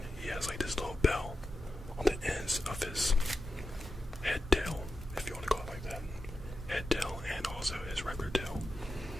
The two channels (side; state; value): both; normal; correlation 0.90